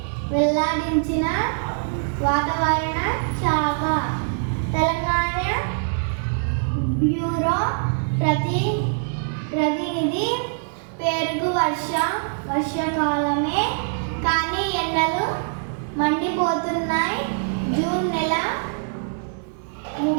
వెల్లడించిన వాతావరణ శాఖ. తెలంగాణ బ్యూరో ప్రతినిధి పేరుకు వర్షాకాలమే కానీ ఎండలు మండిపోతున్నాయి. జూన్ నెల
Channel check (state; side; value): silent; left; 63 dB below the other